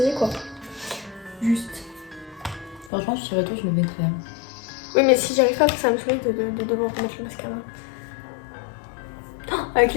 quoi. Juste. Franchement, je serais toi, je me mettrais. Oui, mais si j'arrive pas, ça me saoule de devoir remettre le mascara. Oh, avec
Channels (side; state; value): right; drops out; at 2.9 s